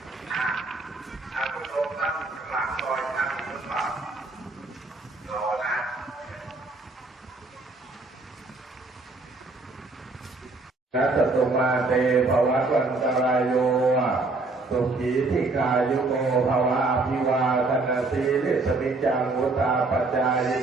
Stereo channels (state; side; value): quieter; left; 3.4 dB